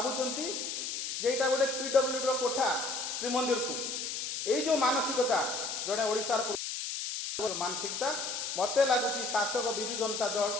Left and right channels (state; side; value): noise; left; hiss, 4 dB below the sound